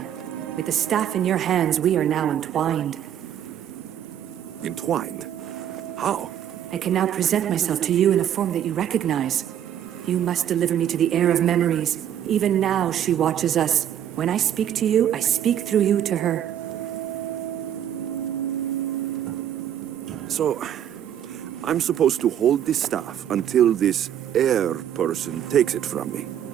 With the staff in your hands, we are now entwined. Entwined? How? I can now present myself to you in a form that you recognize. You must deliver me to the Heir of Memories. Even now, she watches us. When I speak to you, I speak through you to her. So, I'm supposed to hold this staff until this Heir person takes it from me.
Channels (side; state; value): left; quieter; 10.1 dB